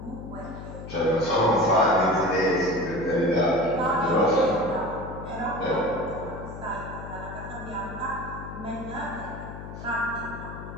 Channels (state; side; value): noise; left; hum, 11 dB below the sound